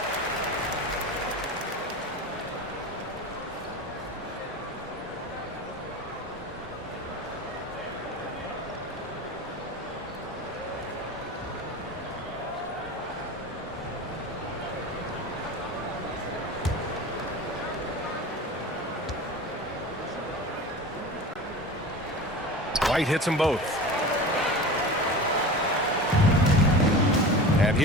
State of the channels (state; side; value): normal; both; correlation 0.33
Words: White hits them both. And